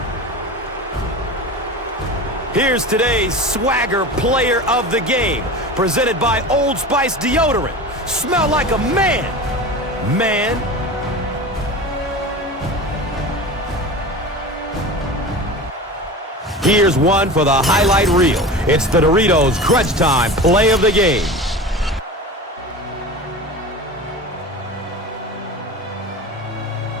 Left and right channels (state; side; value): normal; both; correlation 0.32